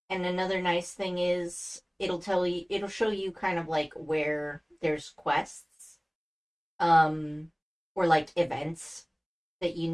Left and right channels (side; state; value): both; identical; correlation 1.00